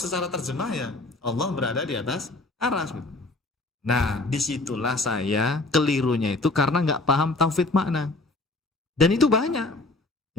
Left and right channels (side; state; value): right; quieter; 3.1 dB